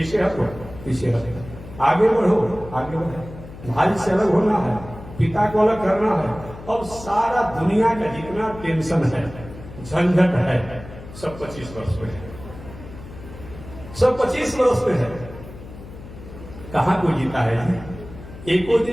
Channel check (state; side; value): noise; left; hum, 15 dB below the sound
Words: हटो, पीछे हटो, आगे बढ़ो, आगे बढ़ो, भाई से अलग होना है, पिता को अलग करना है। अब सारा दुनिया का जितना टेंशन है, झंझट है, सब 25 वर्ष पे है, सब 25 वर्ष पे है। कहां कोई जीता है? एको